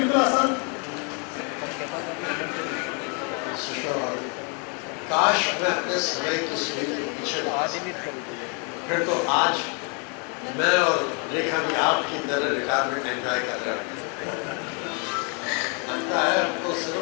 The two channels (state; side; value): quieter; right; 36.2 dB